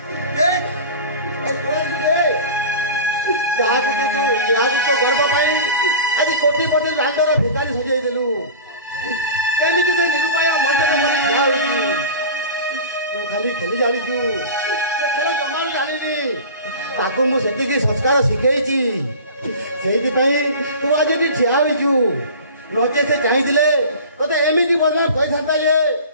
ଯାହାକୁ ତୋ ଗର୍ବ ପାଇଁ ଆଜି କୋଟିପତି ଲାଣ୍ଡର ଭିକାରୀ ସଜେଇ ଦେଲୁ। ଏମିତି ସେ ନିରୁପାୟ ମଣିଷର ମନେ ଠିଆ ହୋଇଛି। ତୁ ଖାଲି ଖେଳି ଜାଣିଛୁ, ସେ ଖେଳ ଜମା ବି ଜାଣିନି। ତାକୁ ମୁଁ ସେତିକି ସଂସ୍କାର ଶିଖେଇଛି। ସେଇଥିପାଇଁ ତୁ ଆଜି ଏଠି ଠିଆ ହୋଇଛୁ। ନଚେ ସେ ଚାହିଁଥିଲେ ତୋତେ ଏମିତି ବଦନାମ କହିଥାନ୍ତା ଯେ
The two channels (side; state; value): both; inverted; correlation -0.35